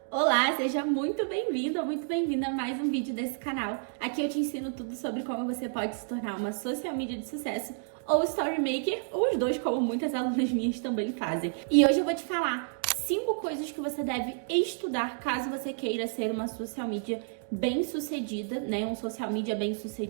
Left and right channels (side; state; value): left; silent; digital silence